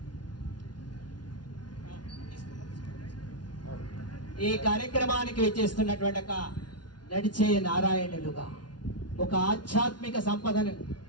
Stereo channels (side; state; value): right; late; 0.70 ms